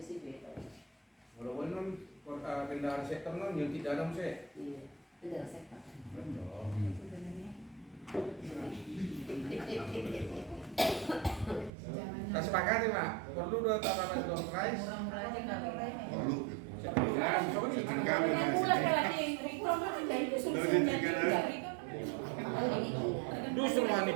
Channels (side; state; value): left; drops out; at 11.7 s